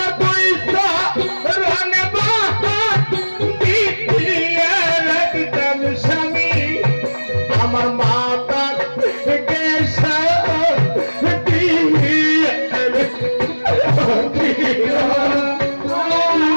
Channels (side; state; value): both; inverted; correlation -1.00